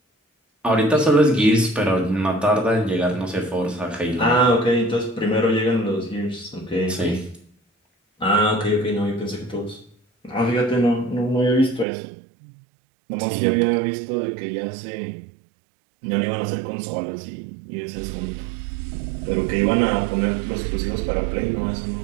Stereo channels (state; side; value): drops out; left; at 11.9 s